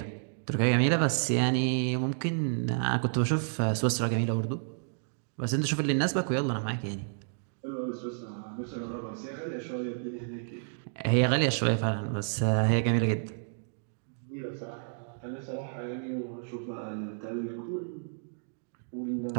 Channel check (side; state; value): left; silent; digital silence